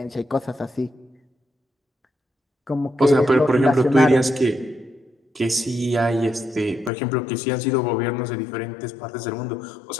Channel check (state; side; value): drops out; right; at 6.9 s